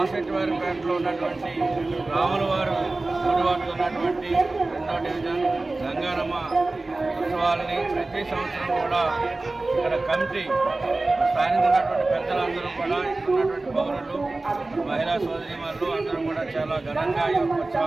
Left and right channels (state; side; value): quieter; left; 3.2 dB